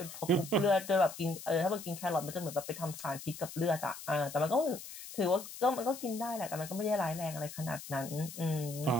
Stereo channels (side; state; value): left; noise; hiss, 12 dB below the sound